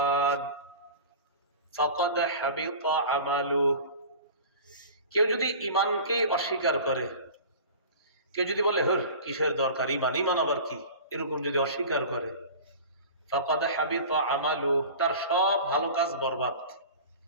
ফাকাদ হাবিতা আমালুহু। কেউ যদি ঈমানকে অস্বীকার করে, কেউ যদি বলে হর কিসের দরকার ঈমান, ঈমান আবার কি, এরকম যদি অস্বীকার করে, ফাকাদ হাবিতা আমালুহু, তার সব ভালো কাজ বরবাদ।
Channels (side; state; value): both; inverted; correlation -0.38